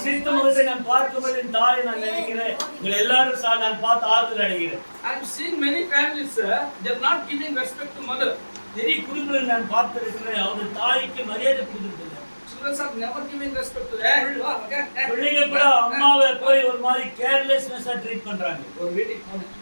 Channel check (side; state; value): both; inverted; correlation -1.00